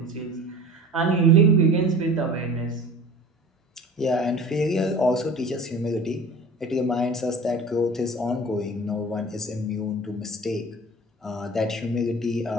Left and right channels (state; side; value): normal; both; correlation 0.41